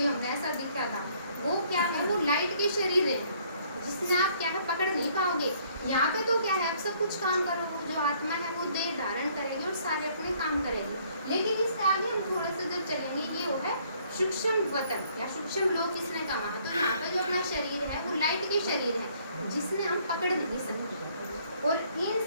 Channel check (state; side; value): inverted; both; correlation -0.63